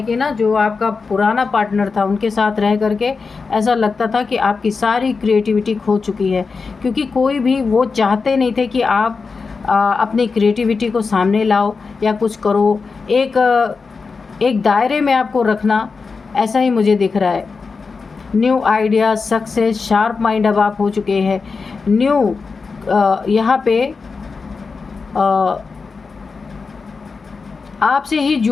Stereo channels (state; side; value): quieter; right; 4.7 dB